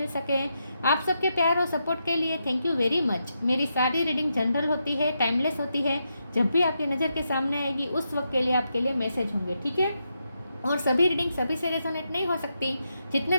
सके। आप सबके प्यार और सपोर्ट के लिए थैंक यू वेरी मच। मेरी सारी रीडिंग जनरल होती है, टाइमलेस होती है। जब भी आपकी नज़र के सामने आएगी उस वक्त के लिए आपके लिए मैसेज होंगे, ठीक है। और सभी रीडिंग सभी से रेजोनेट नहीं हो सकती। जितने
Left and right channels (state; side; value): inverted; both; correlation -0.84